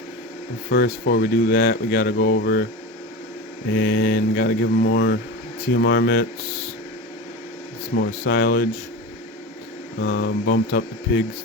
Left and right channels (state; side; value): normal; both; correlation 0.27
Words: first, before we do that, we gotta go over and gotta give them more TMR mitts, some more silage. Bumped up the pigs